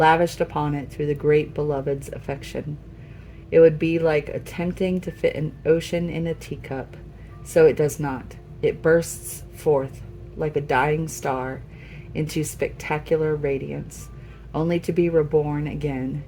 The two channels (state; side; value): identical; both; correlation 1.00